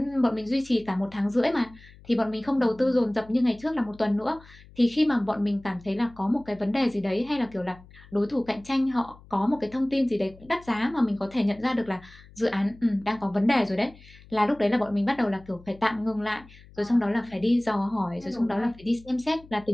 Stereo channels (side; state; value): left; noise; hum, 23 dB below the sound